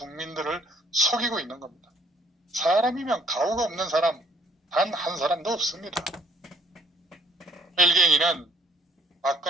속이고 있는 겁니다. 사람이면 가오가 없는 사람 단 한 사람도 없습니다. 일갱이는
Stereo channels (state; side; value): normal; both; correlation 0.61